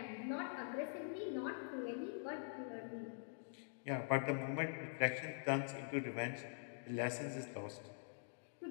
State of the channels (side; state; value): right; silent; digital silence